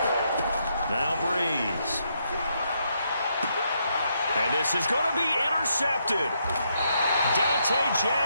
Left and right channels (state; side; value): inverted; both; correlation -0.77